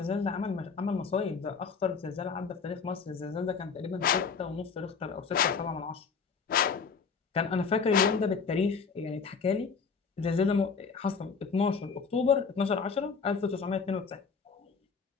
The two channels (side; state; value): right; quieter; 5.5 dB